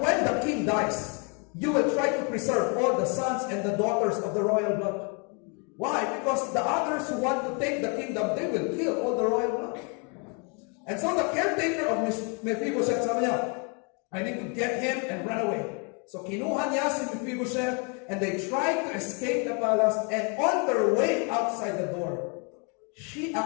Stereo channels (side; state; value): right; quieter; 35.5 dB